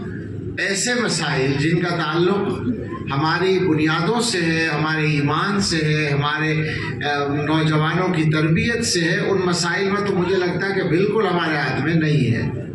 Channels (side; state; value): both; identical; correlation 1.00